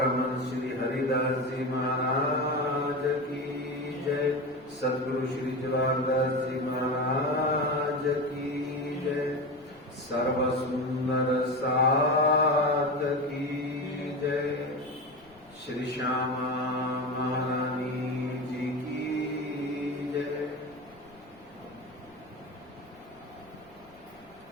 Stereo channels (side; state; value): left; noise; rumble, 28 dB below the sound